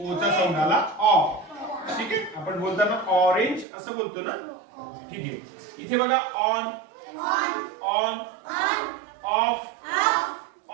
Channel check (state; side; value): drops out; left; at 3.7 s